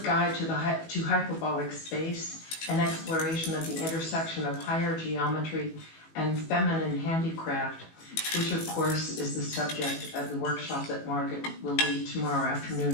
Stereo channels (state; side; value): late; right; 18 ms